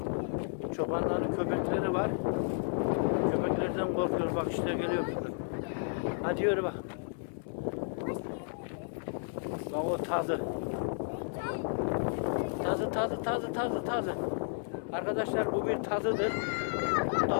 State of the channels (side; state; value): right; silent; 55 dB below the other